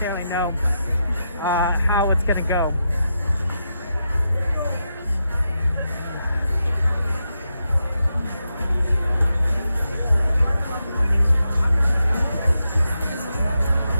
know how it's going to go.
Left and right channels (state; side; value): inverted; both; correlation -0.86